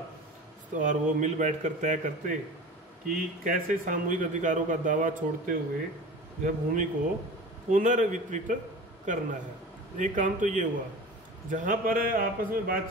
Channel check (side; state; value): both; normal; correlation 0.36